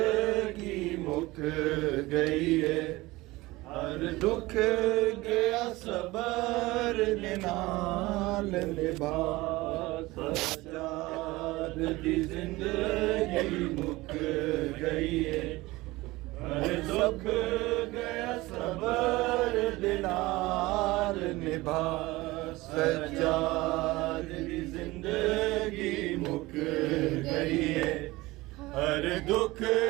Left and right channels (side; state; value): left; quieter; 20.2 dB